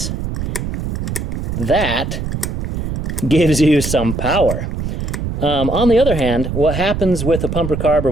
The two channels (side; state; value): right; noise; rumble, 3 dB below the sound